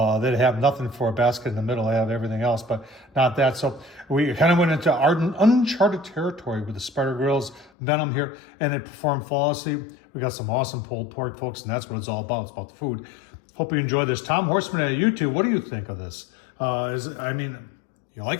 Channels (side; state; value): right; drops out; at 7.7 s